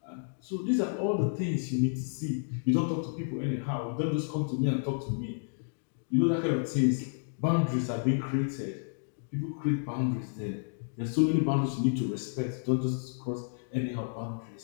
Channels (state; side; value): silent; right; digital silence